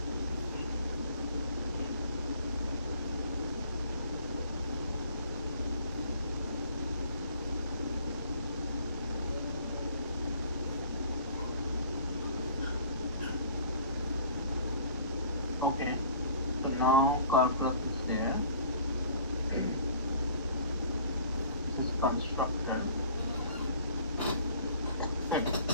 okay. So now car class is there. This is constructor.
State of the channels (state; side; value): inverted; both; correlation -0.51